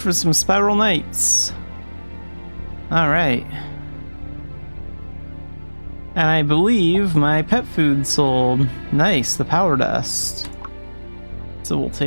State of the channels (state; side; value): inverted; both; correlation -1.00